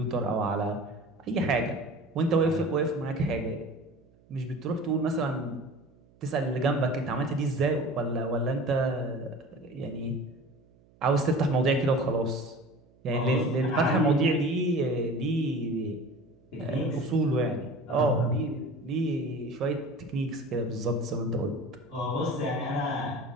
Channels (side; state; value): right; noise; hum, 30 dB below the sound